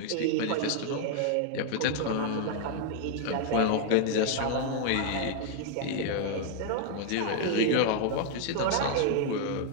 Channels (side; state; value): both; different; correlation 0.00